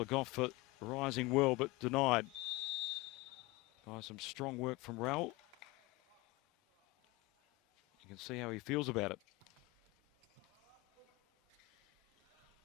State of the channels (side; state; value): right; quieter; 22.1 dB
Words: Goff rising well, but denied. Some strong work from Raoul. You can see how he feels about it.